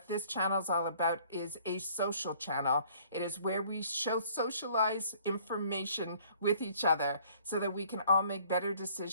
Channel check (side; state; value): both; inverted; correlation -0.57